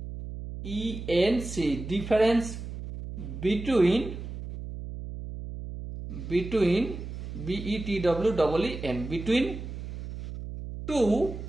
difference between between two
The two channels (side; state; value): right; noise; hum, 9 dB below the sound